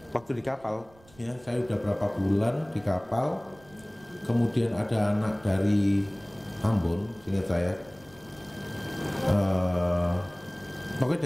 waktu di kapal ya, saya udah berapa bulan di kapal, kemudian ada anak dari Ambon, seingat saya pokoknya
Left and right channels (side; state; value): right; noise; rumble, 26 dB below the sound